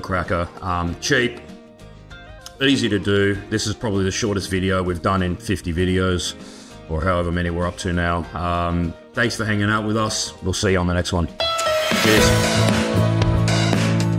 cracker. Cheap. Easy to do. This is probably the shortest video we've done in 50 videos, or however many we're up to now. Thanks for hanging out with us. We'll see you on the next one. Cheers.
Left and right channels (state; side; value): identical; both; correlation 1.00